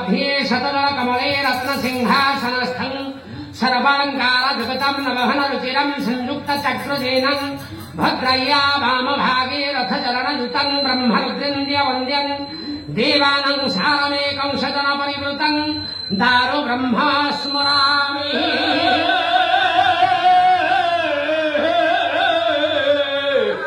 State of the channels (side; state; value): both; identical; correlation 1.00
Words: शतदल कमले रत्न सिंहासनस्थं सर्वालंकार जगतम नवहन रुचिरम संयुक्त चक्रजेनं भद्रय्या वाम भागे रथ चरण युतं ब्रह्मरुद्रेन्द्र वन्द्यं देवानं सारमेकं सजन परिवृतं दारु ब्रह्मा स्मरामि।